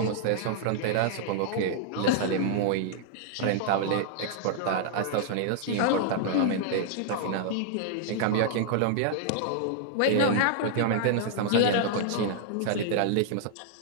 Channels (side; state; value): both; different; correlation -0.01